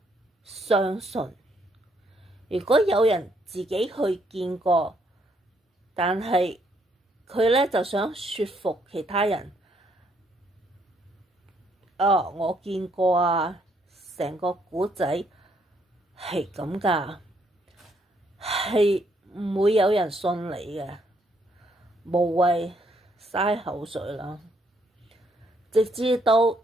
相信。如果有人自己去見過，但係佢呢就想說服其他人，我見過啊，成個故仔係咁㗎，係唔會有人信你嘅，無謂嘥口水啦。直至到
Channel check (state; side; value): normal; both; correlation 0.71